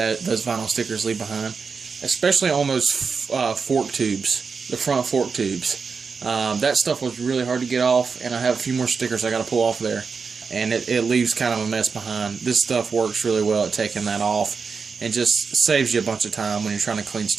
vinyl stickers leave behind, especially on those fork tubes. The front fork tubes. That stuff was really hard to get off, and I have a few more stickers I got to pull off there, and it leaves kind of a mess behind. This stuff works really well at taking that off and just saves you a bunch of time when you're trying to clean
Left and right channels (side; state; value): left; quieter; 5.3 dB